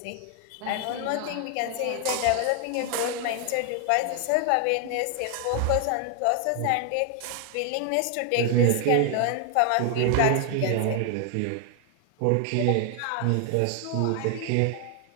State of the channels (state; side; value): different; both; correlation 0.00